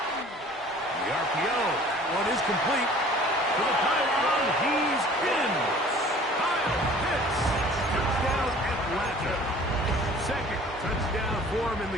RPO, that one is complete. To the pylon, he's in. Kyle Pitts, touchdown Atlanta. 2nd touchdown for him in the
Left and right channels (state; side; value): normal; both; correlation 0.48